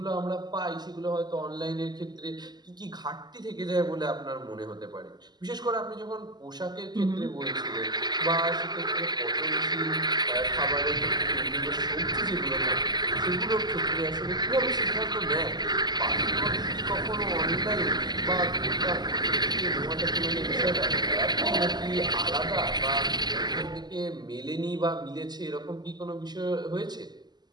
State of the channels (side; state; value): left; late; 0.20 ms